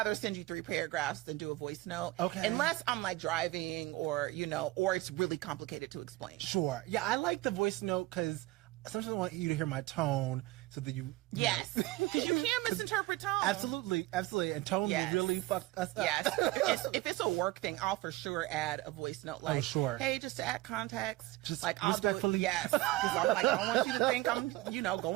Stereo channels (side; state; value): left; quieter; 18.4 dB